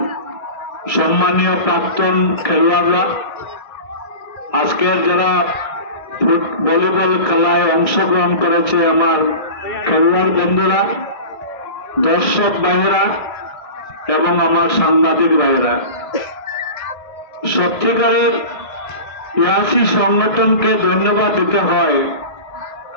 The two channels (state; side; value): late; right; 1.6 ms